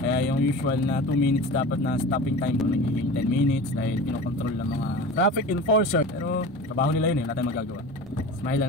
Kaya yung usual na 2 minutes dapat na stopping time ko nagiging 10 minutes dahil kinokontrol ng mga traffic enforcer. Pero trabaho nila yun eh, wala tayong magagawa. Smile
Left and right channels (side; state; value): both; normal; correlation 0.34